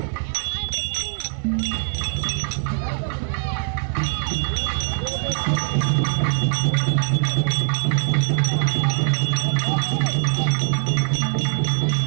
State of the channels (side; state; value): left; silent; digital silence